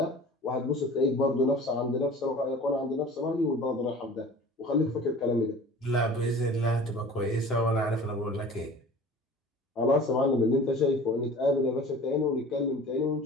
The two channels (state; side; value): normal; both; correlation 0.43